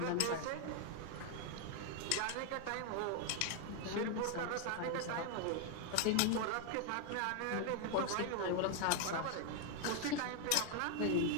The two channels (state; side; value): different; both; correlation 0.00